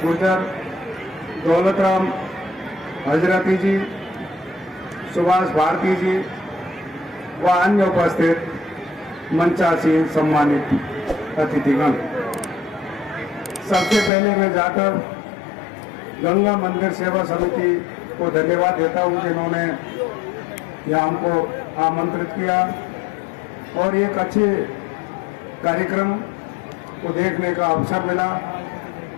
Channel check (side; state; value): right; drops out; at 14.1 s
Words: दौलतराम हजरती जी, सुभाष भारती जी व अन्य उपस्थित मंचासीन सम्मानित अतिथिगण, सबसे पहले मैं जाकर गंगा मंदिर सेवा समिति को धन्यवाद देता हूं जिन्होंने यहाँ हमको आमंत्रित किया और एक अच्छे कार्यक्रम को देखने का अवसर मिला।